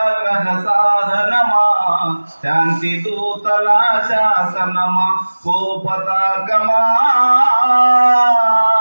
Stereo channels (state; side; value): inverted; both; correlation -1.00